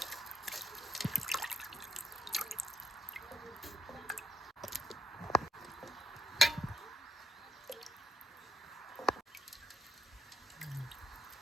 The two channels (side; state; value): both; normal; correlation 0.78